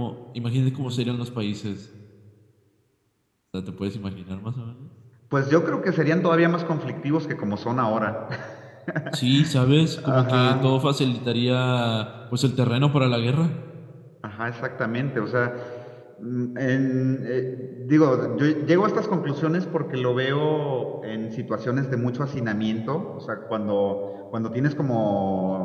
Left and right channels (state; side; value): identical; both; correlation 1.00